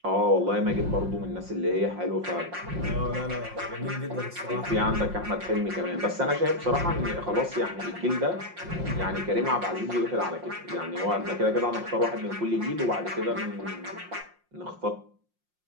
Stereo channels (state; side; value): late; left; 5.6 ms